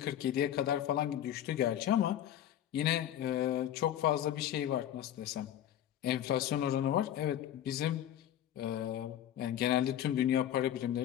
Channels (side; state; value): right; quieter; 11.2 dB